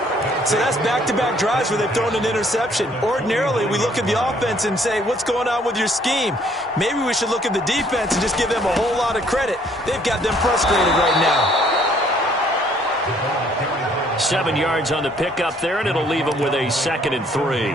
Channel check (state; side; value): normal; both; correlation 0.62